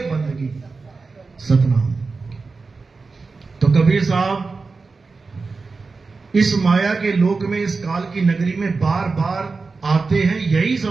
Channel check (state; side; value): quieter; left; 4.2 dB